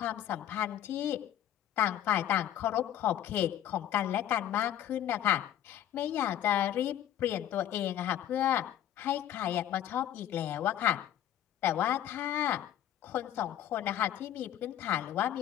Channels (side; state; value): right; quieter; 11.4 dB